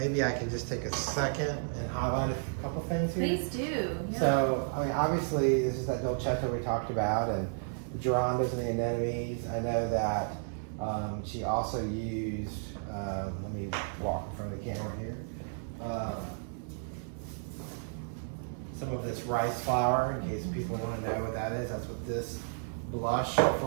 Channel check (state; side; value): silent; left; 56 dB below the other